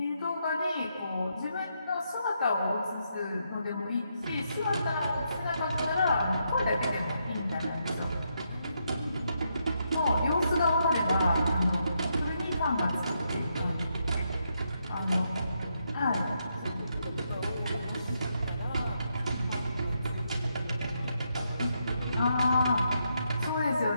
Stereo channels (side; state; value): both; inverted; correlation -0.79